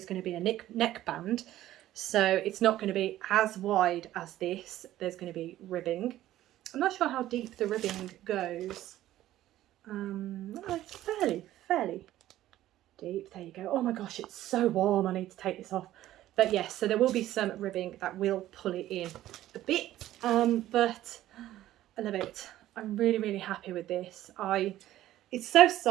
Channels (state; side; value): quieter; left; 14.0 dB